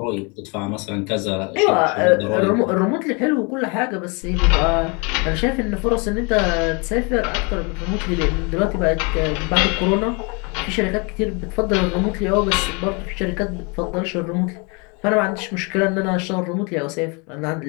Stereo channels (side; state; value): right; quieter; 31.8 dB